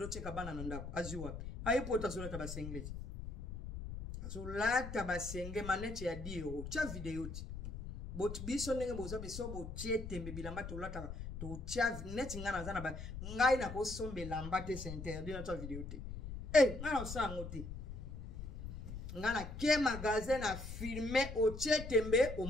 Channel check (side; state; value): left; noise; rumble, 8 dB below the sound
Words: kabana na ndako aziwa ayipota zola tabasengezi azolata basenge manete ya 10 euros cha video ti bot biso ndenge boza beso bo tietembe bilamba to lata to cha net ngana zana ba ngai na ko sombe lamba te c'est interdit na ta video ti ngana osango ti ngana ke magasin na filmer o tietembe o